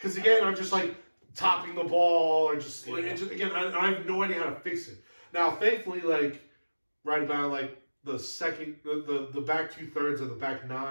again, I'm just like topping the ball, or just, like, again, I have no idea how to fix it. Now, thankfully, like right about like the second, the back 2/3 of the back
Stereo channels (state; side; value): inverted; both; correlation -1.00